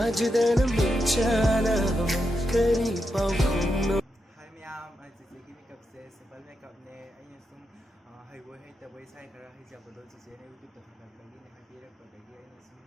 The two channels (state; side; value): normal; both; correlation 0.85